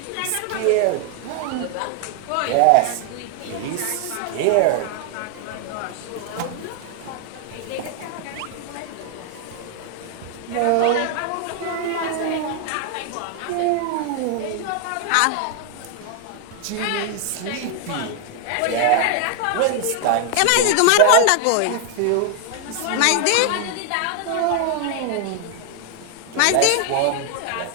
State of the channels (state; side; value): different; both; correlation 0.00